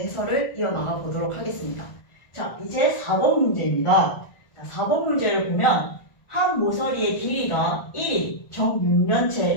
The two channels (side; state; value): right; late; 1.4 ms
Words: 이어나가 보도록 하겠습니다. 자, 이제 4번 문제입니다. 자, 4번 문제를 보면 한 모서리의 길이가 1인